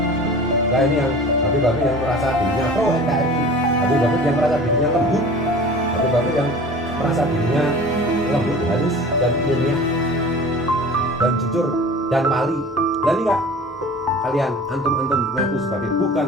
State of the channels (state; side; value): normal; both; correlation 0.41